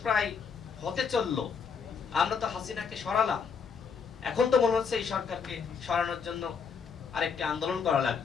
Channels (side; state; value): right; quieter; 6.1 dB